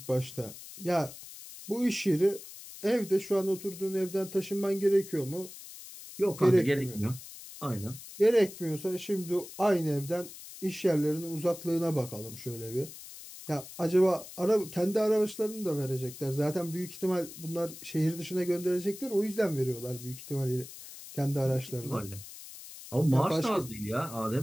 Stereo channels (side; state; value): left; noise; hiss, 14 dB below the sound